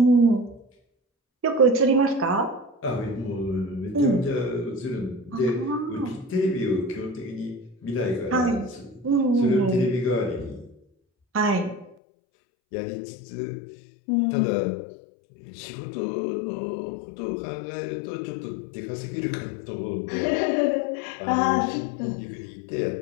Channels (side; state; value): right; drops out; at 12.0 s